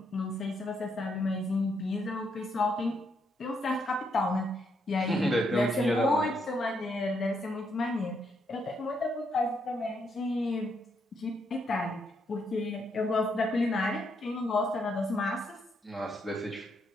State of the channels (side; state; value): both; normal; correlation 0.77